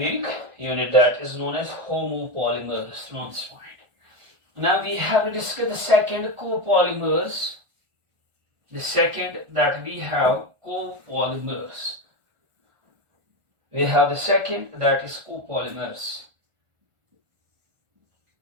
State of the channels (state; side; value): late; left; 1.5 ms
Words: unit, that is known as homopolymers. Note this point. Now we have to discuss the second, copolymers. The second that we have copolymers. We have the second, that is copolymers.